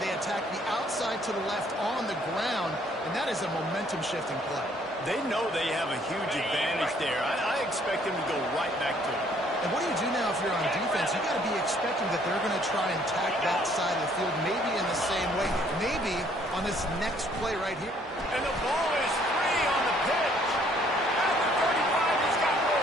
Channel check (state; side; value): normal; both; correlation 0.63